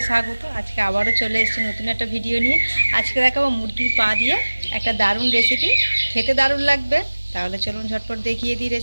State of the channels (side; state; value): both; inverted; correlation -1.00